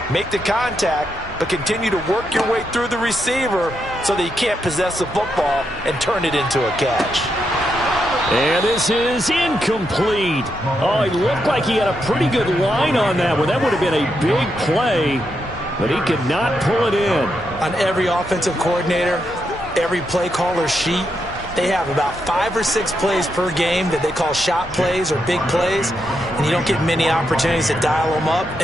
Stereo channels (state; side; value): normal; both; correlation 0.82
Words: make the contact, but continue to work your way through the receiver so that you can't possess the football and turn it into a catch. And this is incomplete. Oh, he looked like he had a pretty good line on that one. That would have been a big play, but he could not pull it in. On every offensive coordinator, every play caller sheet, they have about 5 or 6 plays per game that they call shot plays or big plays, and you don't get many opportunities to dial them up,